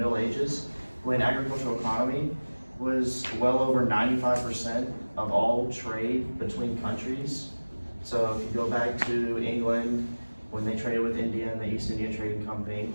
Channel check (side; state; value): both; inverted; correlation -1.00